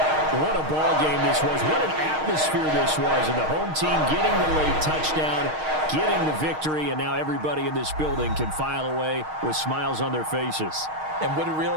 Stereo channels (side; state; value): left; late; 6.4 ms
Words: What a ball game this was. What an atmosphere this was. And the home team getting the late touchdown, getting the victory, and now everybody in this building can file away with smiles on their faces. And what do real